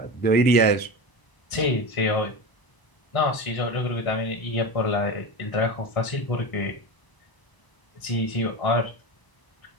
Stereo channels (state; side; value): late; right; 1.0 ms